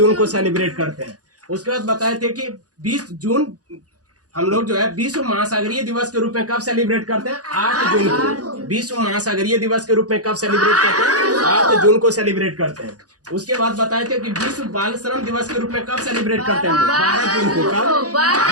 को सेलिब्रेट करते हैं। उसके बाद बताए थे कि 20 जून हम लोग जो है विश्व महासागरीय दिवस के रूप में कब सेलिब्रेट करते हैं? 8 जून को। विश्व महासागरीय दिवस के रूप में कब सेलिब्रेट करते हैं? 8 जून को सेलिब्रेट करते हैं। उसके बाद बताए थे कि विश्व बाल श्रम दिवस के रूप में कब सेलिब्रेट करते हैं? 12 जून को। कब?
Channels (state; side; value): late; left; 0.68 ms